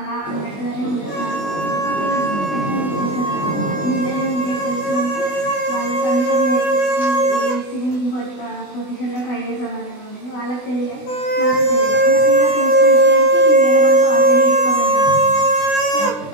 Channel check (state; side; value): late; right; 20 ms